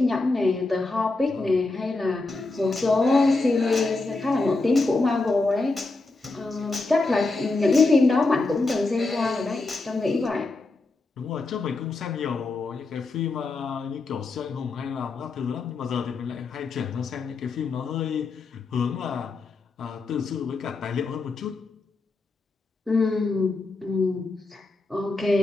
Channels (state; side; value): quieter; right; 3.4 dB